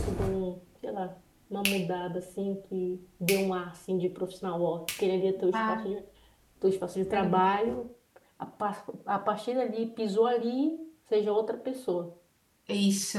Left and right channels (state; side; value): identical; both; correlation 1.00